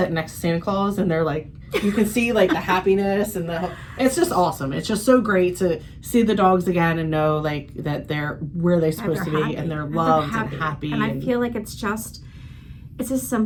next to Santa Claus and they're like, you can see like the happiness and it's just awesome. It's just so great to see the dogs again and know like that they're where they're supposed to be happy. and they're loved and happy. happy. And I feel like it's as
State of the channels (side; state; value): both; identical; correlation 1.00